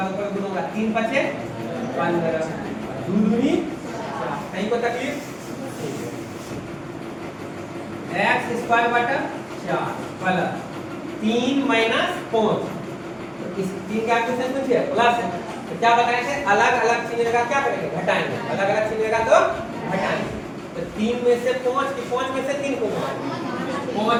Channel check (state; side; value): identical; both; correlation 1.00